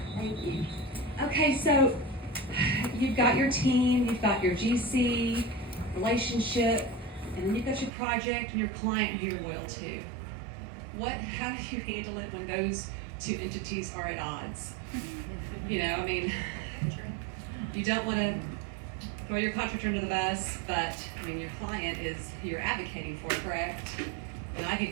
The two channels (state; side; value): drops out; left; at 7.9 s